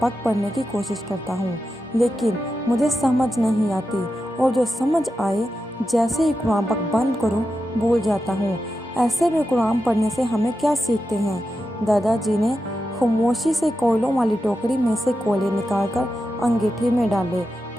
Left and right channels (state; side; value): normal; both; correlation 0.89